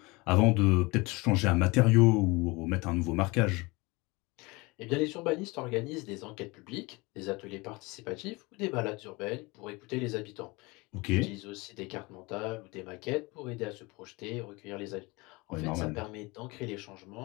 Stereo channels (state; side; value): quieter; right; 24.6 dB